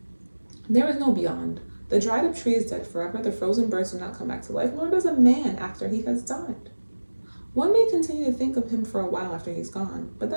There is no beyond. The dried up tree is dead forever, the frozen birds do not come back to life, nor does a man after he has died. One may continue to think of him for a while after he's gone, but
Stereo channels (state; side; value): inverted; both; correlation -1.00